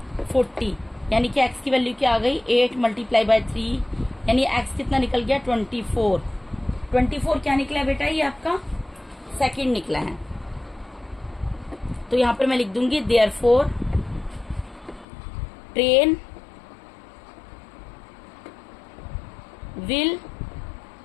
40, यानी कि x की वैल्यू क्या आ गई 8 मल्टीप्लाई बाय 3, यानी x कितना निकल गया 24। 24 क्या निकला है बेटा, ये आपका सेकंड निकला है। तो यहां पर मैं लिख दूंगी therefore train will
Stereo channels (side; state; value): right; drops out; at 15.1 s